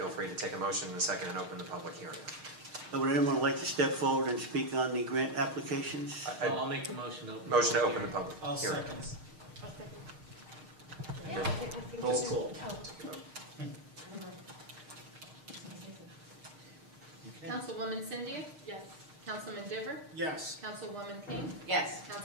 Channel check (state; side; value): late; left; 6.5 ms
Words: free to take a motion in a second and open the public hearing. Would anyone like to step forward and speak on the grant applications? I'll make the motion to open. Motion to open the public I'll hearing. second. And then roll call. Councilwoman Cindy? Yes. Councilman Diver? Yes. Councilwoman King? Yes.